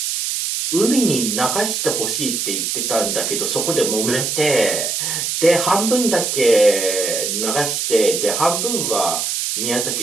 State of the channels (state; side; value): noise; right; hiss, 1 dB below the sound